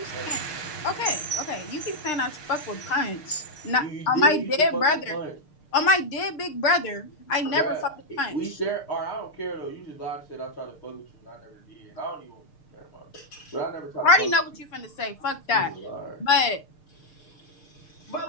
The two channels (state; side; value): late; right; 6.6 ms